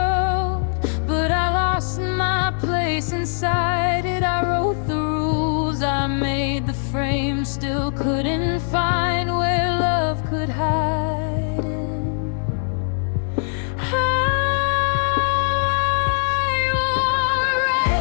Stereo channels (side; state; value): right; silent; digital silence